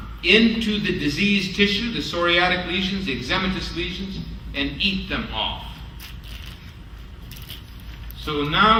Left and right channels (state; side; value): identical; both; correlation 1.00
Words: into the diseased tissue, the psoriatic lesions, the eczematous lesions, and eat them off. So now